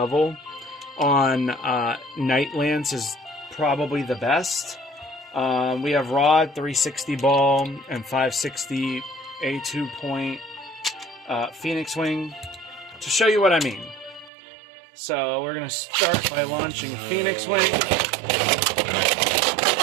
on Night Lance is probably the best. We have Rod, 360 ball, and 560 A2 point Phoenix Wing to show you what I mean. So we're going to start by launching Phoenix Wing.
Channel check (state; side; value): drops out; left; at 14.3 s